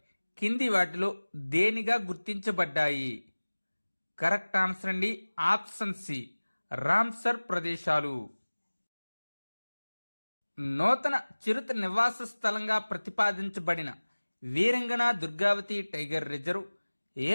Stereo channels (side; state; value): both; inverted; correlation -1.00